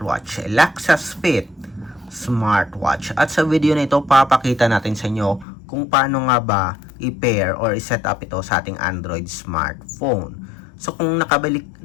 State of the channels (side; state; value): right; drops out; at 5.5 s